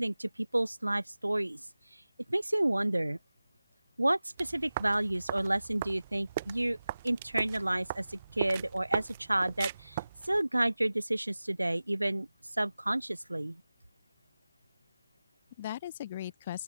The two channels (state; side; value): inverted; both; correlation -0.96